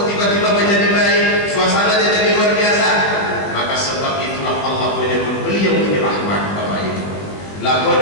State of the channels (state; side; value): late; right; 20 ms